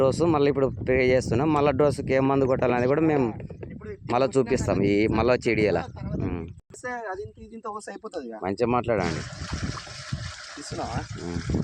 డోసు మళ్ళీ ఇప్పుడు ప్రే చేస్తున్నాం. మళ్ళీ డోసుకి ఏం మందు కొట్టాలనేది కూడా మేము మళ్ళీ చూపిస్తాం. ఈ మళ్ళీ వచ్చి ఇడియలా మంచిగా మాట్లాడండి.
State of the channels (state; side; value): identical; both; correlation 1.00